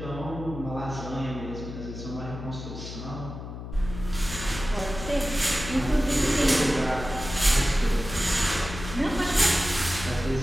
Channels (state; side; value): noise; left; hum, 9 dB below the sound